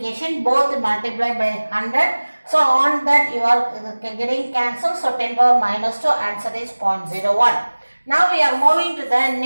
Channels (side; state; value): both; inverted; correlation -1.00